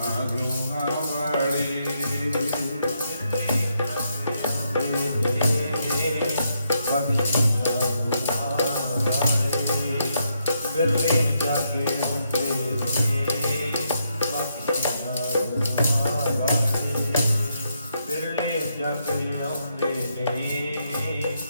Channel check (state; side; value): inverted; both; correlation -0.79